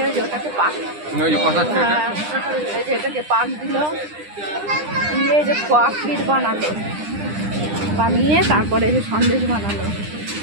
যে ওটাকে পাক এই যে এটাকে পাক দিল দিয়ে এই যে ক্ষীর বানালো বানিয়ে তারপরে এই যে সন্দেশ বানালো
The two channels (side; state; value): left; late; 9.9 ms